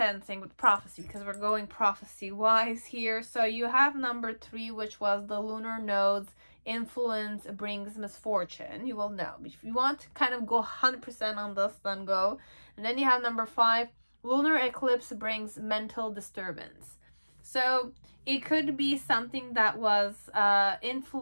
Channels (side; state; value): both; inverted; correlation -1.00